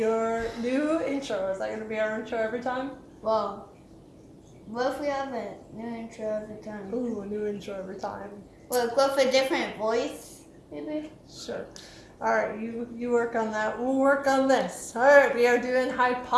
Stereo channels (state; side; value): identical; both; correlation 1.00